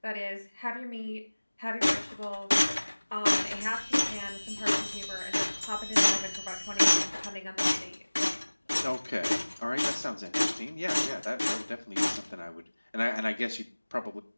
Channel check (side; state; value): both; inverted; correlation -1.00